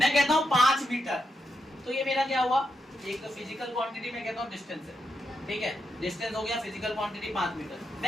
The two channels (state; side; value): normal; both; correlation 0.83